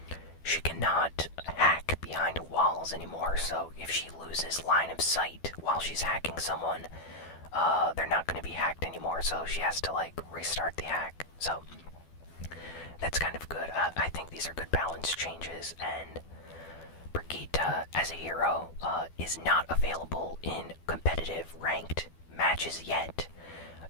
she cannot hack behind walls anymore, so if she loses line of sight while she's hacking someone, they're not going to be hacked anymore, so she has to, restart the hack. So, that's kind of good. I think these are good balance changes, and Brigitte, as a hero, is not available in competitive ranked matches yet.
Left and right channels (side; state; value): right; late; 12 ms